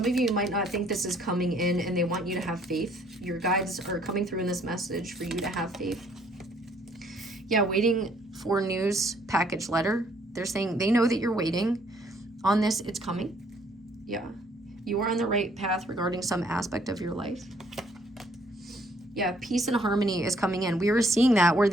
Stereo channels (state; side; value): normal; both; correlation 0.64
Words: of you might not think this is coming in, and they want you to have faith. Your guides are coming through in this message for you to have faith. Yeah, waiting for news, package letter. They're saying they know that you're waiting on this. It's coming. Yeah, you are on the right path regarding some aspect of your life. Yeah, peace and harmony is coming in. We were seeing that where